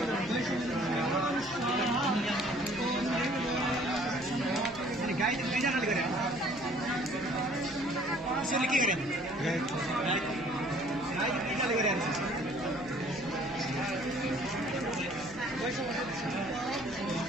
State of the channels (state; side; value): noise; right; hum, 20 dB below the sound